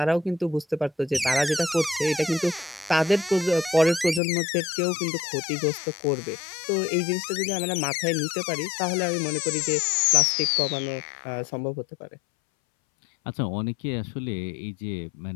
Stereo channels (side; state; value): right; drops out; at 4.2 s